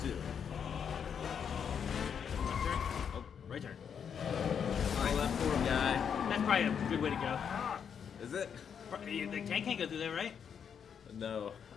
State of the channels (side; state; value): right; quieter; 7.5 dB